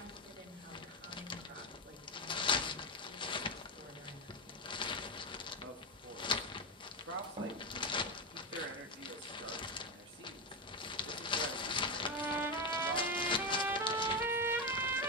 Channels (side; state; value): both; normal; correlation 0.13